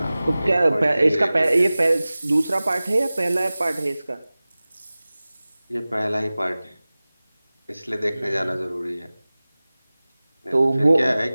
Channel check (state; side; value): inverted; both; correlation -0.98